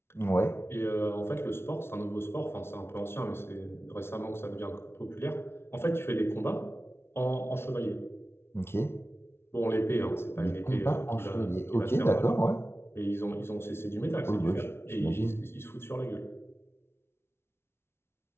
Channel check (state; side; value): late; right; 0.12 ms